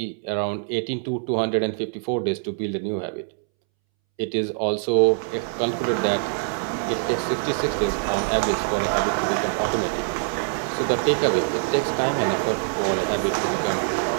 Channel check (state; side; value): silent; left; 63 dB below the other